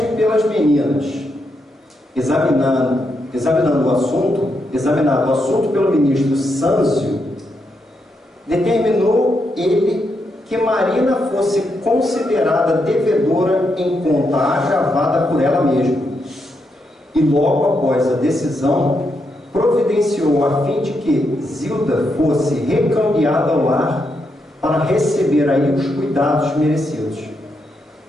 pelas meninas, examinado o assunto pelo ministro Sâncio, determinou ele que Marina fosse considerada devedora em conta agravada por ela mesma, e logo após a decisão providenciou a fim de que Zilda fosse recambiada ao lar para receber aí os cuidados merecidos.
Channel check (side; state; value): both; normal; correlation 0.81